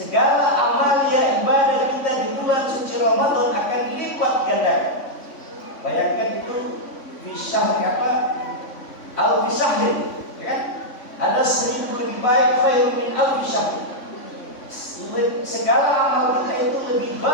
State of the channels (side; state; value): right; late; 3.5 ms